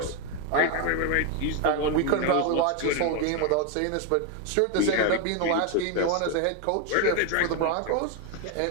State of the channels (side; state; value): both; different; correlation 0.01